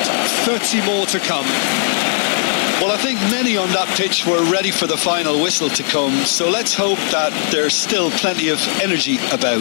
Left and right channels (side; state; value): right; silent; digital silence